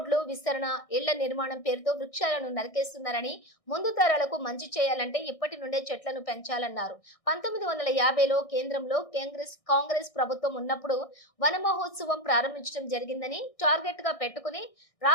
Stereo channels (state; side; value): late; right; 1.6 ms